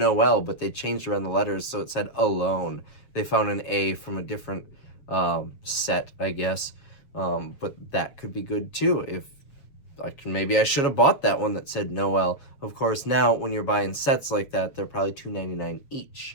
but they changed around the letters so it said alone. They found an A from a different set, I guess. But that could be good too. If maybe I should have bought that one that said Noel. Of course, now when you're buying sets like that, they're probably $2.99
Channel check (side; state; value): right; late; 7.3 ms